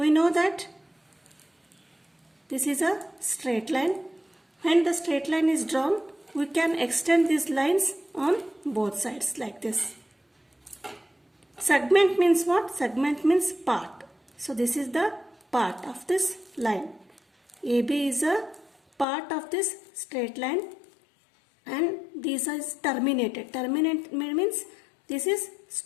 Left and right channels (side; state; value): right; drops out; at 19.1 s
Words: know that this is a straight line. When the straight line is drawn, we can extend these lines on both sides like this. Segment means what? Segment means part. So this is the part of this line. AB is a part of this straight line and this is terminated. Terminate means This is